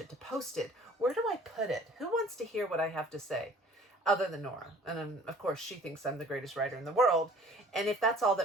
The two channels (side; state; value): both; normal; correlation 0.51